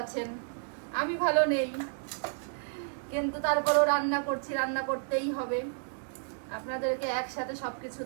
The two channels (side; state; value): left; silent; digital silence